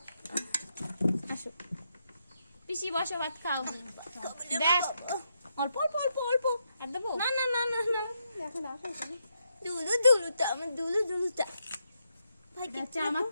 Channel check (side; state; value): both; inverted; correlation -0.81